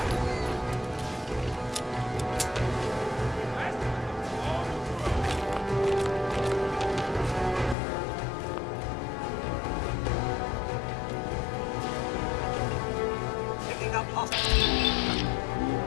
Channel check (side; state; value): right; drops out; at 7.8 s